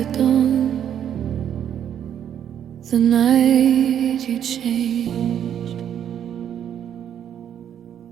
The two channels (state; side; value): quieter; left; 9.5 dB